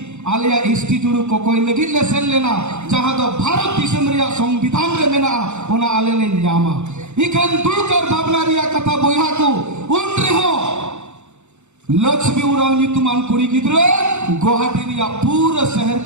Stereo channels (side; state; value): left; late; 0.83 ms